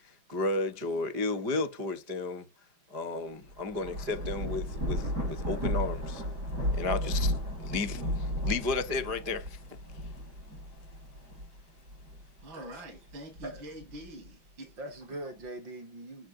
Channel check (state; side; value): late; left; 5.0 ms